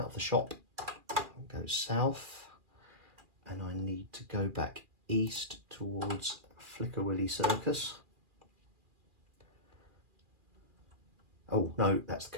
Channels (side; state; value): left; late; 2.4 ms